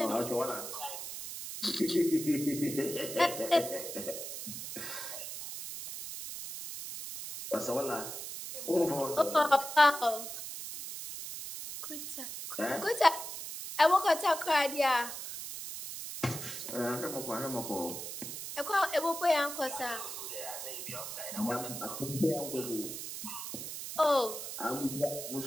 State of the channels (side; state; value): right; noise; hiss, 7 dB below the sound